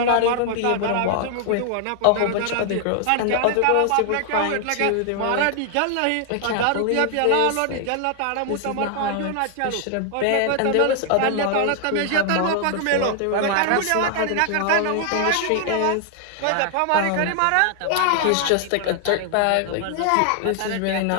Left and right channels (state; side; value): different; both; correlation 0.00